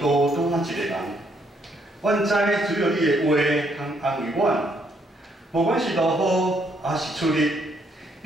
孤单一个人。阮知只有你的话通安慰阮。 无管是落雨，还是出日，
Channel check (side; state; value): both; normal; correlation 0.72